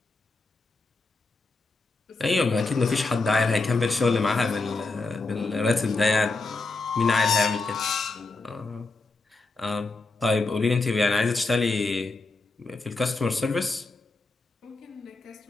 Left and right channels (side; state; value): right; quieter; 3.6 dB